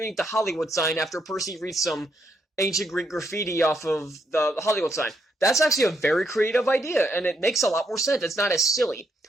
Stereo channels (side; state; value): both; normal; correlation 0.76